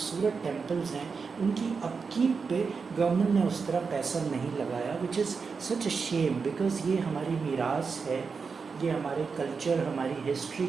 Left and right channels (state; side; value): quieter; left; 5.2 dB